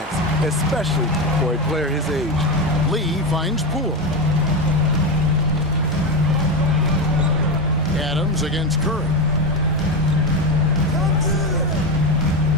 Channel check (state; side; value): normal; both; correlation 0.15